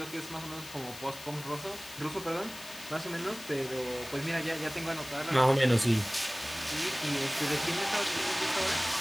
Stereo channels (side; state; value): left; noise; hiss, 14 dB below the sound